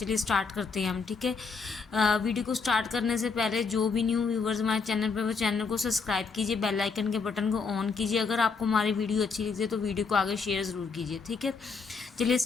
स्टार्ट करते हैं हम। ठीक है, वीडियो को स्टार्ट करने से पहले जो भी न्यू व्यूवर्स हमारे चैनल पर, वो चैनल को सब्सक्राइब कीजिए, बेल आइकन के बटन को ऑन कीजिए। अगर आपको हमारी वीडियो अच्छी लगे तो वीडियो को आगे शेयर ज़रूर कीजिए। ठीक है, चलिए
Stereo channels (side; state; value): right; quieter; 4.9 dB